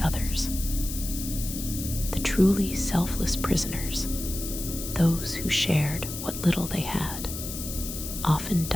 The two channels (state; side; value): noise; left; hiss, 8 dB below the sound